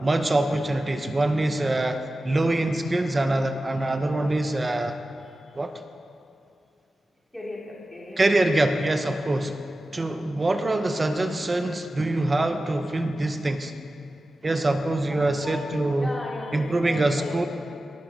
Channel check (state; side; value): normal; both; correlation 0.94